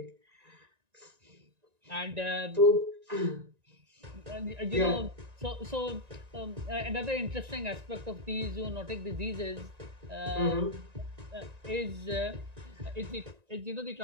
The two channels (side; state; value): left; late; 1.9 ms